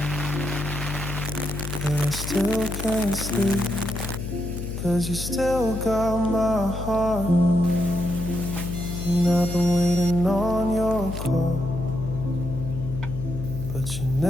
and I still can't sleep, 'cause you still got my heart, and I've been waiting on your call, but you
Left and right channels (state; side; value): noise; left; hum, 6 dB below the sound